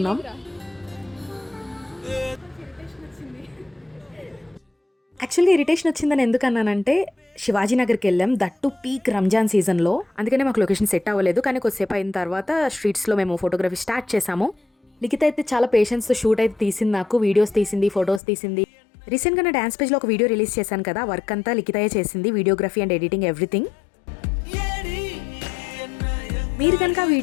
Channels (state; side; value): drops out; right; at 18.2 s